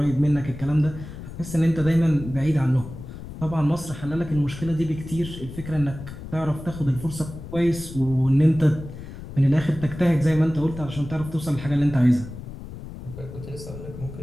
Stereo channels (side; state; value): left; noise; rumble, 12 dB below the sound